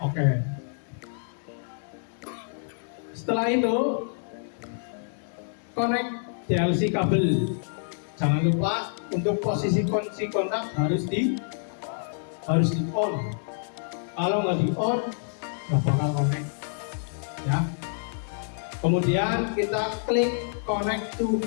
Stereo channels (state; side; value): silent; right; digital silence